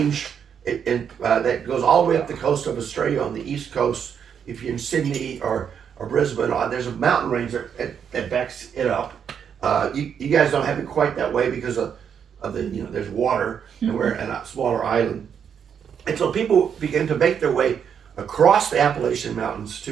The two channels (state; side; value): quieter; left; 7.7 dB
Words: that goes all the way up the coast of Australia on the east coast. If you're in Sydney or Brisbane, there's a mountain range that backs it up. You guys don't have it quite that way because of the, there's water and we're in a smaller island. And so people began to make their way across the Appalachian Mountains